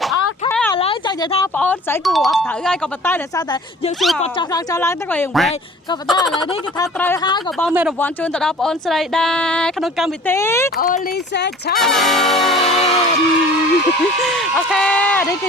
អូខេឥឡូវចង់និយាយថាបងអូនស្រីគួរអត់ត្រូវហើយក៏ប៉ុន្តែដោយសារតែយើងសួរគាត់ចោះឡើងទៅក៏យើងវិញក៏ប៉ុន្តែឥឡូវនេះគេថាត្រូវហើយក៏បងមានរង្វាន់ជូនទៅដល់បងអូនស្រីដែរក្នុងកម្មវិធី Only Say Challenge អូខេនេះគឺ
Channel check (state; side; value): normal; both; correlation 0.46